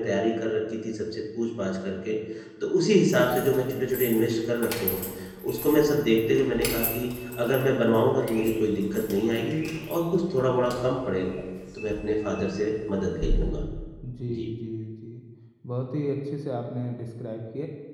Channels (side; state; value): both; identical; correlation 1.00